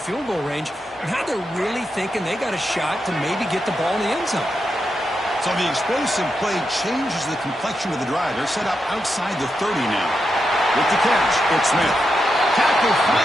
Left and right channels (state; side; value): normal; both; correlation 0.86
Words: goal range, now they're really thinking they got a shot to maybe get the ball in the end zone. So the explosive play changes the complexion of the drive. They're set up outside the 30 now. With the catch, it's Smith. Tackle